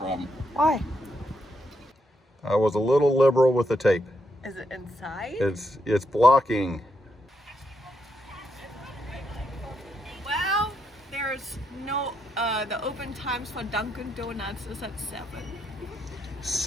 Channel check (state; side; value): normal; both; correlation 0.80